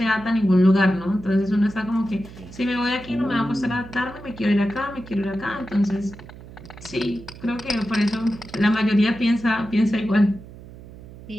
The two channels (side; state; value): right; noise; hum, 17 dB below the sound